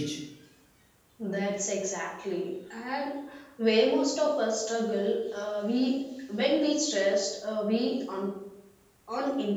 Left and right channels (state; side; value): identical; both; correlation 1.00